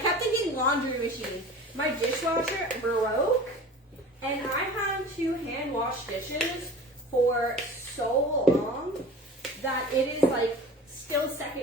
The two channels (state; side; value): normal; both; correlation 0.39